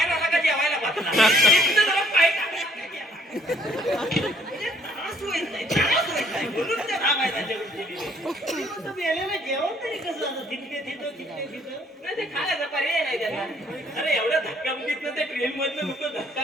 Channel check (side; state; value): both; normal; correlation 0.62